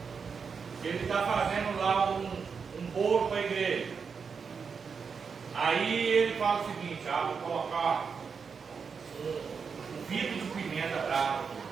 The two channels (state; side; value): quieter; left; 5.8 dB